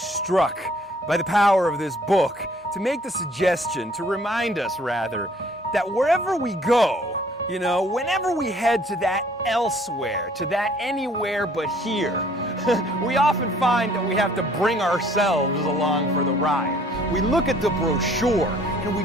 by the power of this book to make the suggestion, to remind us rather, that wherever we go, you know, whenever we head to that elsewhere, to that anywhere but here, we often find that we have to bring ourselves along for the ride. We look at the brochure and we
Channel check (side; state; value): both; normal; correlation 0.58